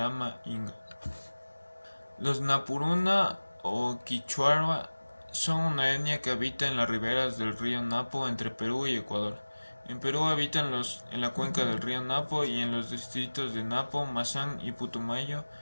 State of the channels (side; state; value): both; inverted; correlation -1.00